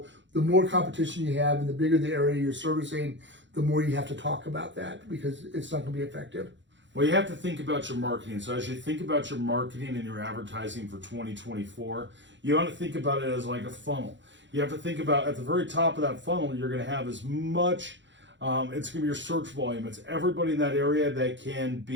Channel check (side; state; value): left; late; 0.54 ms